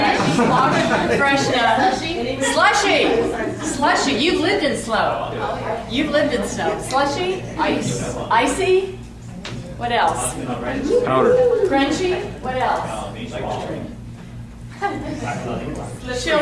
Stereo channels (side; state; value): both; identical; correlation 1.00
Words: Fresh. Slushy. Slushy. You've lived in snow. You've lived in snow. Slushy. Ice. Icy. What else? Powder. Crunchy. What else?